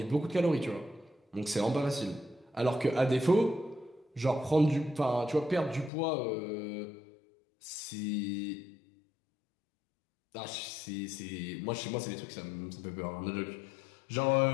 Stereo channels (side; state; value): right; drops out; at 5.9 s